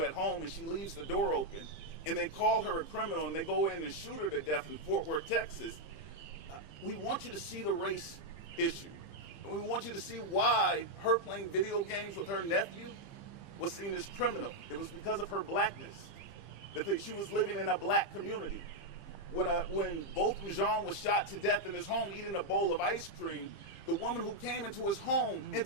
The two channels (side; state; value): right; late; 15 ms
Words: at home and she leaves the door open, and they call her a criminal and they go in and shoot her to death in Fort Worth, Texas, we want you to see the race issue. And we want you to see why her playing video games with her nephew was seen as criminal. It was because of her blackness, that she was living in a black community. When Botham Jean was shot to death in his home eating a bowl of ice cream, the woman who came into his home,